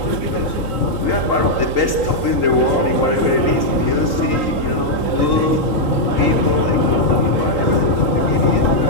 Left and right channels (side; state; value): right; late; 3.8 ms